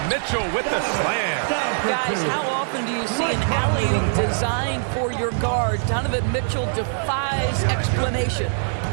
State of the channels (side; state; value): left; silent; digital silence